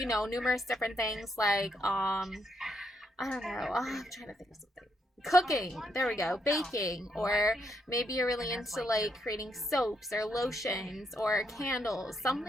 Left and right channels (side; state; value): both; normal; correlation 0.77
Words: know, numerous different things like I don't know. Oh, I'm trying to think of something. Cooking, there we go. Baking, or maybe you're really into like creating soaps or lotions or candles,